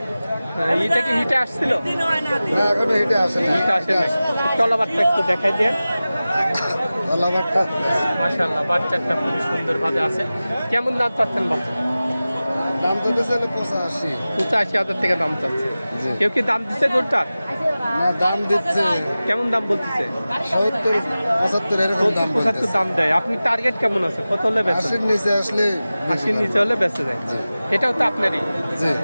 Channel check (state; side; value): inverted; both; correlation -0.96